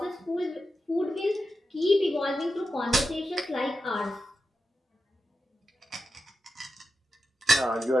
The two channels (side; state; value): both; normal; correlation 0.91